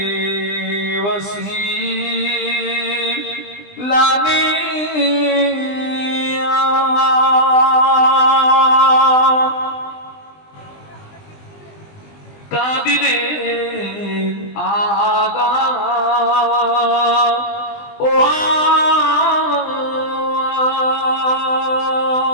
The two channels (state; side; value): late; right; 20 ms